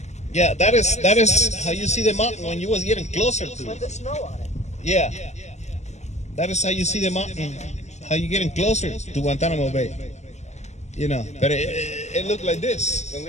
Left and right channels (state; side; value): late; right; 0.33 ms